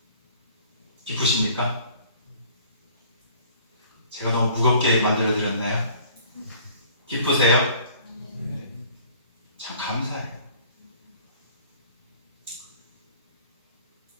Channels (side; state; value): both; inverted; correlation -0.53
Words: 기쁘십니까? 제가 너무 무겁게 만들어드렸나요? 기쁘세요? 참 감사해요.